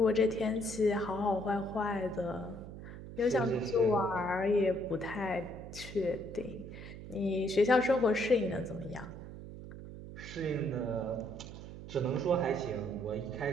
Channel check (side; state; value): right; noise; hum, 12 dB below the sound